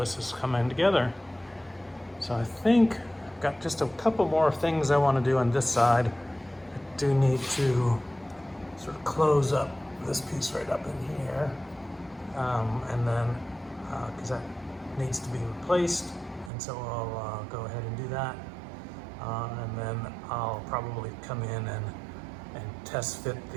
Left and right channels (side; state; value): left; drops out; at 16.5 s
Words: is coming together. So I think I've got just a couple more things I want to do on this side. I do need to sort of close up this piece right up in here, and then because that needs to be replaced, and so I'll go ahead and do that, and then I'll probably come in and test fit